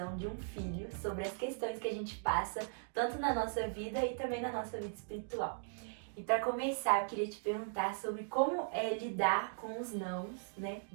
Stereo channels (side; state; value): left; silent; digital silence